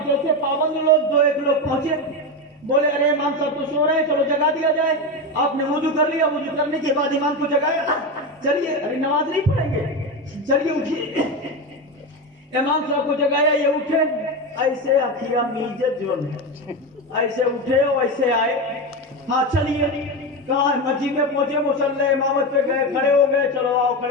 جیسے پابند لوگ 2-1 لوگ پہنچے، بولے ارے امام صاحب تو سو رہے ہیں، چلو جگا دیا جائے۔ آپ نے وضو کر لیا، وضو کرنے کے بعد امام کو جگایا، چلیے ارے نماز نہیں پڑھیں گے، چلیے اٹھیے۔ امام صاحب کو جگایا، یہ اٹھے، ایسے اکھیا میجت جو ایسے اٹھے اور ایسے آئے، ہاں چلیے کہاں مسجد میں پہنچے، مصلی امامت پہ گئے، کھڑے ہو گئے، چلو آؤ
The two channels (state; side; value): normal; both; correlation 0.16